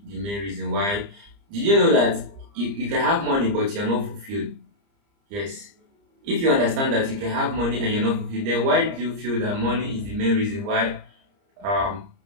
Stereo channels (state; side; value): late; left; 30 ms